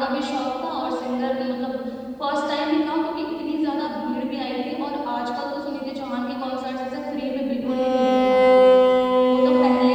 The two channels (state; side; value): identical; both; correlation 1.00